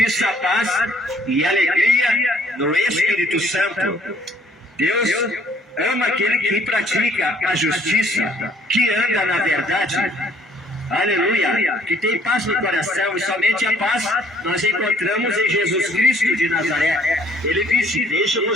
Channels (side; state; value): both; normal; correlation 0.61